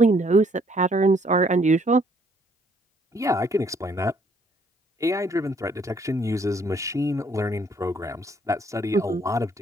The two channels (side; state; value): both; normal; correlation 0.65